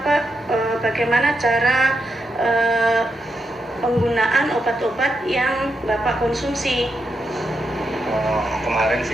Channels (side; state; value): both; normal; correlation 0.84